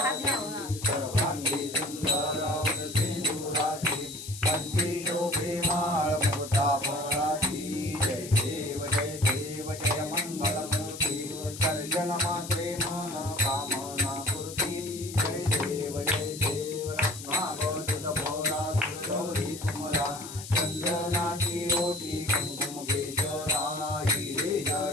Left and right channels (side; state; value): left; noise; hiss, 12 dB below the sound